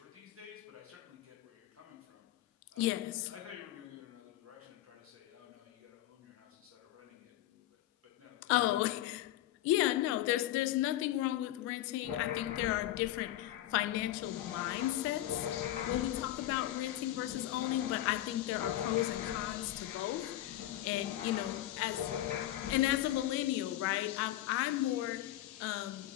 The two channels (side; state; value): right; quieter; 14.3 dB